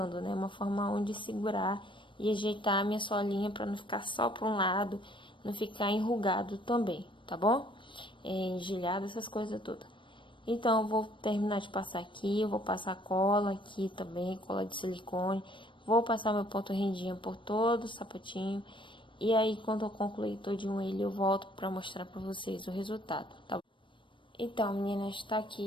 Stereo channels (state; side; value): late; right; 0.24 ms